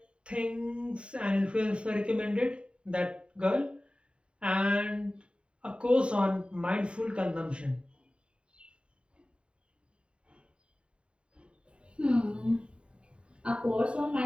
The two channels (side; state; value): left; late; 0.056 ms